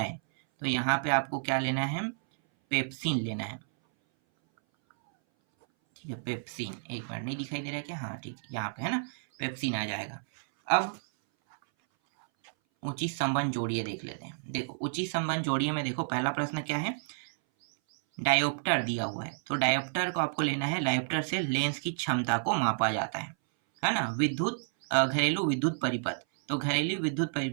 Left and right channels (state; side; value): silent; left; 57 dB below the other